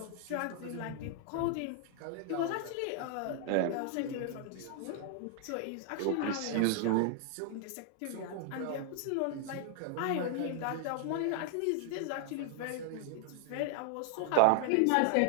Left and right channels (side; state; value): both; different; correlation 0.00